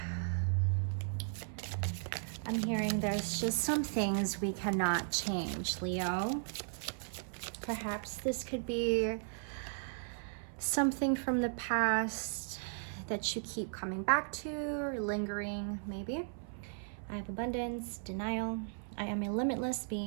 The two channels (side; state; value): left; silent; 54 dB below the other